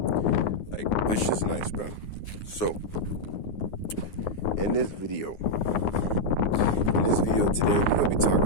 Like, this shit's nice, bro. So, in this video today, we're gonna be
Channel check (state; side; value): late; right; 9.6 ms